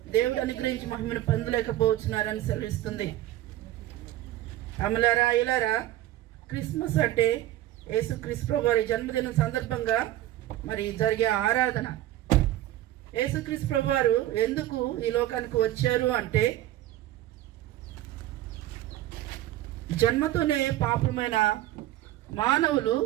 దేవుడు అనుగ్రహించి మహిమను పొందలేకపోతున్నారని సెలవిస్తుంది. అమలారా ఇలారా, క్రిస్మస్ అంటే యేసుక్రీస్తు ప్రభు వారి జన్మదినం సందర్భంగా మరి జరిగే ఆరాధన. యేసుక్రీస్తు ప్రభు వారు ఎందుకు ఈ లోకానికి వచ్చారు అంటే, జన్మతోనే పాపమైన మానవులు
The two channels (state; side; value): quieter; left; 14.3 dB